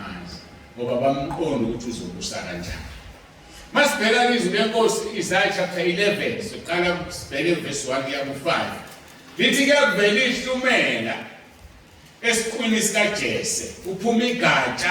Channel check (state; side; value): identical; both; correlation 1.00